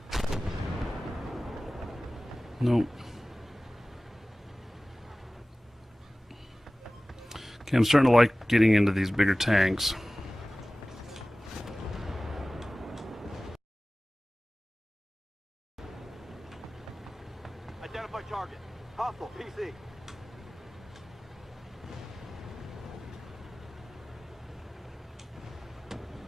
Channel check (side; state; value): both; normal; correlation 0.98